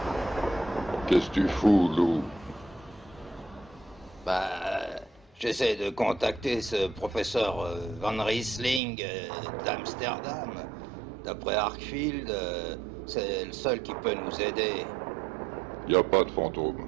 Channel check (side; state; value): left; drops out; at 8.8 s